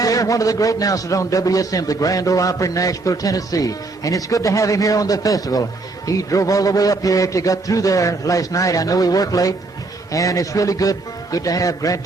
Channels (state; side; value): quieter; left; 3.4 dB